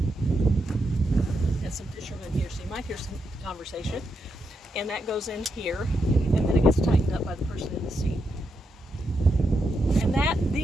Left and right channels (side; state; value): both; normal; correlation 0.83